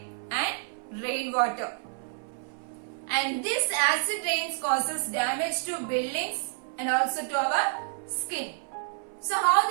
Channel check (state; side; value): silent; left; 59 dB below the other